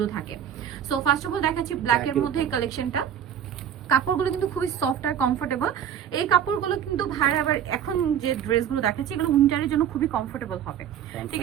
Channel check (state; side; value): quieter; left; 9.3 dB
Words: থাকে। সো ফার্স্ট অফ অল দেখাচ্ছি ব্ল্যাকের মধ্যে এই কালেকশনটা। কাপড়গুলো কিন্তু খুবই সফট আর কমফোর্টেবল। এই কাপড়গুলো কিন্তু ভাইরা আবার এখন যে ড্রেসগুলো দেখাচ্ছি এগুলো উইন্টারের জন্য খুবই কমফোর্টেবল হবে, ঠিক